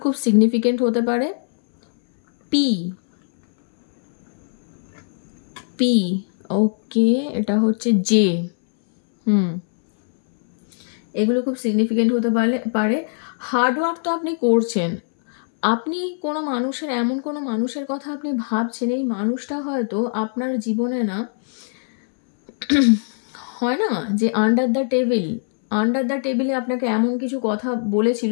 খুব সিগনিফিকেন্ট হতে পারে। পি, ওকে, এটা হচ্ছে জে, এগুলো খুব সিগনিফিকেন্ট হতে পারে। হার্ডওয়ার্ক তো আপনি করছেন, আপনি এমন কোনো মানুষের কথা আপনি ভাবছেন, এই মানুষটা হয়তো আপনার জীবনে না হয় না যে আন্ডার দ্য টেবিলে আপনাকে এমন কিছু কথা বলেছিল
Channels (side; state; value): right; silent; 63 dB below the other